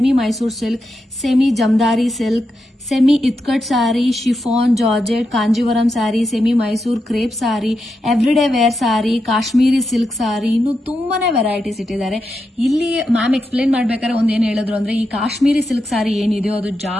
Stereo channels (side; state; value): both; normal; correlation 0.86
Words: Mysore silk, semi ಜಮದಾರಿ silk, semi ikat sari, chiffon, georgette, Kanjeevaram sari, semi Mysore crepe sari, everyday wear sari, Kashmiri silk sari, ಇನ್ನು ತುಂಬಾನೇ ವೆರೈಟೀಸ್ ಇಟ್ಟಿದ್ದಾರೆ. ಇಲ್ಲಿ ಮ್ಯಾಮ್ ಎಕ್ಸ್ಪ್ಲೇನ್ ಮಾಡ್ಬೇಕಾದ್ರೆ ಒಂದೇನು ಹೇಳಿದ್ರು ಅಂದ್ರೆ, ಈ ಕಾಶ್ಮೀರಿ ಸಿಲ್ಕ್ ಸಾರಿ ಏನಿದೆಯೋ ಅದು